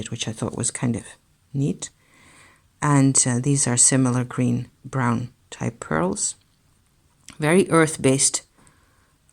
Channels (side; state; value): both; identical; correlation 1.00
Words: which I thought was kind of neat. And these are similar green brown type pearls, very earth-based,